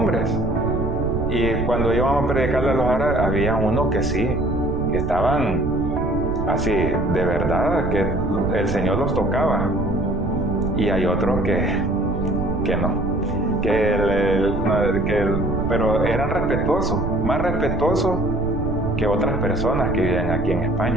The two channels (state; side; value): noise; right; rumble, 5 dB below the sound